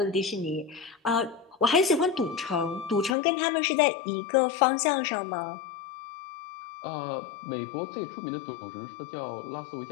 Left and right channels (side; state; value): right; drops out; at 3.2 s